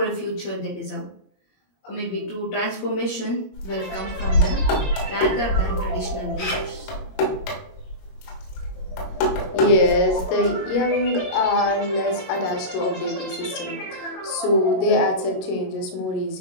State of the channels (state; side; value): late; right; 21 ms